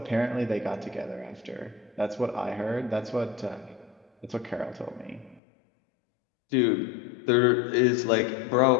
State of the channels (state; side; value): drops out; right; at 5.4 s